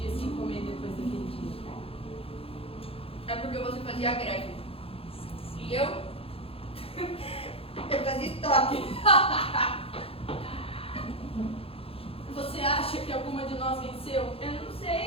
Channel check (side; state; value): right; late; 0.27 ms